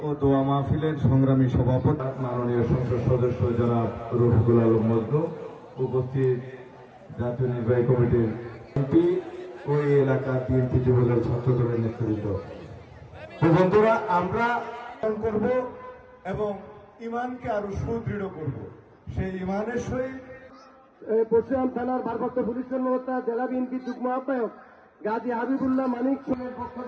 ও দোয়া মাহফিলের সংগ্রামী সভাপতি মাননীয় সংসদ সদস্য জনাব রফিকুল আলম মজনু, উপস্থিত জাতীয় নির্বাহী কমিটির এমপি ও এই এলাকার বিএনপি যুবদল ছাত্রদলের নেতৃবৃন্দ, বন্ধুরা, আমরা করব এবং ইমানকে আরো সুদৃঢ় করব। সেই ইমানের সহিত পশ্চিম থানার ভারপ্রাপ্ত পুলিশ কর্মকর্তা জেলা বিএনপি যুগ্ম আহ্বায়ক গাজী হাবিবুল্লাহ মানিক সিংহের পক্ষ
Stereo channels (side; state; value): both; identical; correlation 1.00